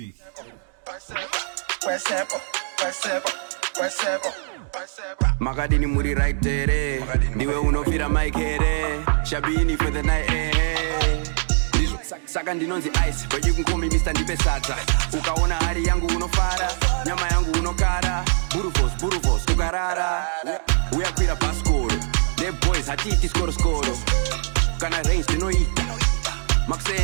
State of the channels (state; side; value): silent; left; digital silence